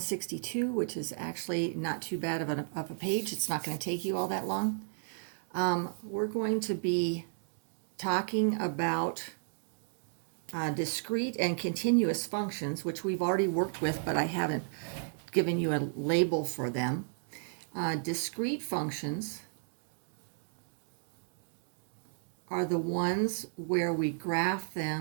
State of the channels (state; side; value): silent; left; digital silence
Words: which is actually not too bad of a page. It's not going to take you all that long. We're going to be talking about discrete and continuous functions, which we've already worked with, but I haven't given you a label for them. Discrete functions are the ones where we graph